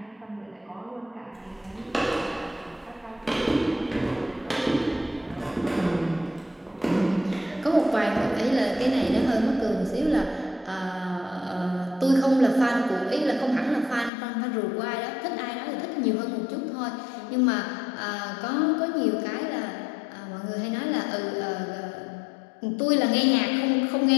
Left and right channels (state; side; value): drops out; right; at 14.1 s